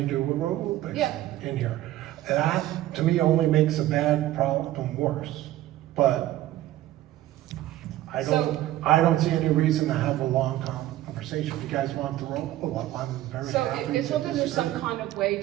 do aerobics Yeah. in here. That, to me, only makes a bad problem worse. But I don't see any reason to have a long conversation. If you guys want the roll up, I'm very So happy as to long as there's some disagree. kind of way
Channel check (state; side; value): quieter; left; 14.5 dB